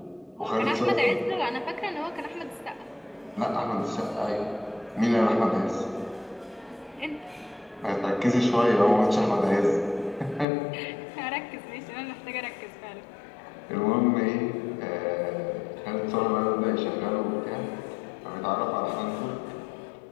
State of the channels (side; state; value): right; drops out; at 10.5 s